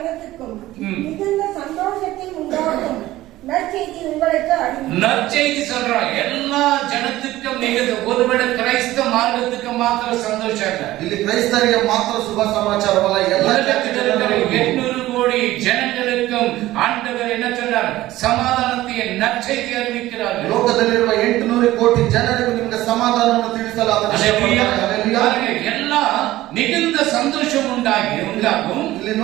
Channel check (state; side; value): quieter; left; 16.1 dB